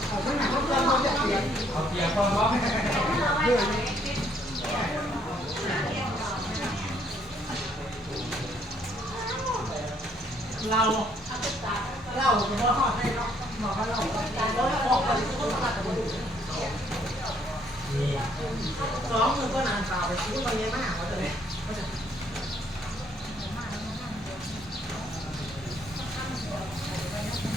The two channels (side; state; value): both; normal; correlation 0.67